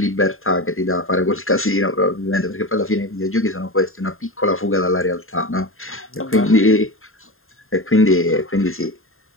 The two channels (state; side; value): late; right; 0.61 ms